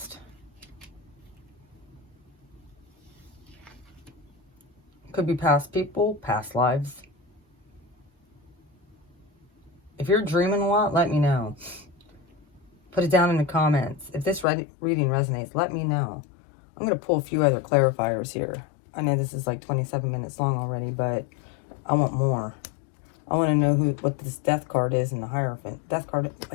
Could be past people, past lives. If you're dreaming a lot, let me know. Put it down in the comments. If this reading resonates, let me know. I'm going to pull a few other clarifiers here. I know this is like 27 minutes long already, but I want more. I want to know what this death card is in the Hierophant. Death card,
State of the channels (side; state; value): right; drops out; at 14.5 s